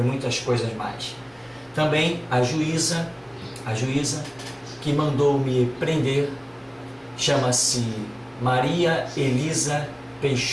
muitas coisas mais. Também a juíza que mandou me prender chama-se Maria Elisa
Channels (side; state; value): both; identical; correlation 1.00